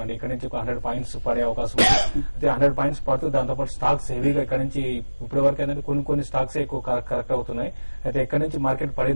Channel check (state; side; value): inverted; both; correlation -1.00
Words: ఇక్కడ నుంచి 100 పాయింట్స్ పడే అవకాశం ఉంది. అయితే 100 పాయింట్స్ పడుతూ దాంతోపాటు స్టాక్స్ హెవీగా ఇక్కడ నుంచి ఇప్పటి వరకు ఏంటంటే కొన్ని స్టాక్స్ ఎక్కువ కరెక్ట్ అవుతున్నాయి. అయితే ఇక్కడ నుంచి మార్కెట్